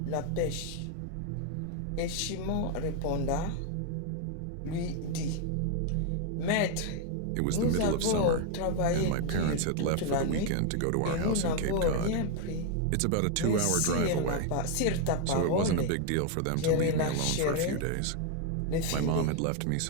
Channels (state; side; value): different; both; correlation 0.01